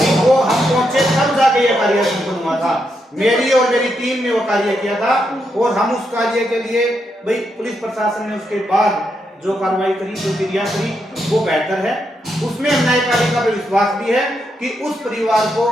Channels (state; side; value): normal; both; correlation 0.81